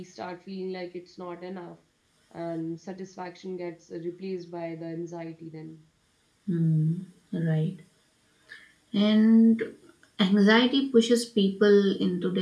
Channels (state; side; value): identical; both; correlation 1.00